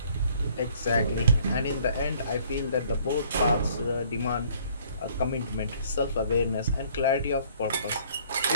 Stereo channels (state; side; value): inverted; both; correlation -0.59